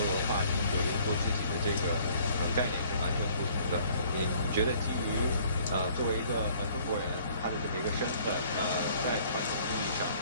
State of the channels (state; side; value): inverted; both; correlation -0.57